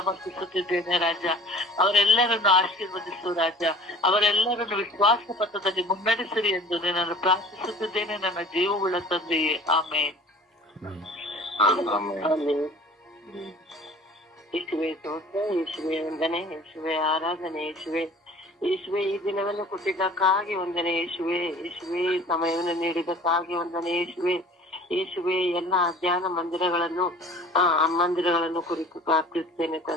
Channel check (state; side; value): normal; both; correlation 0.46